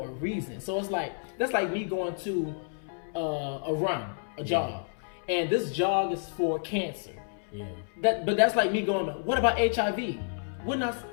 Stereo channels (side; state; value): right; silent; 58 dB below the other